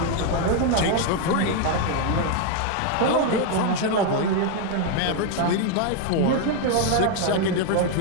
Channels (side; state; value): both; different; correlation 0.01